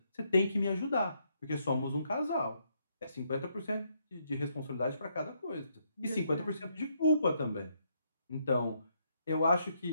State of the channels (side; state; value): both; inverted; correlation -0.75